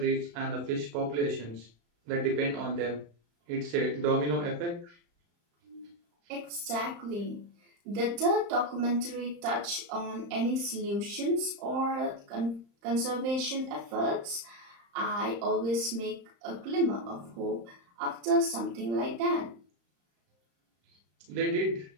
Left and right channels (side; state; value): left; late; 35 ms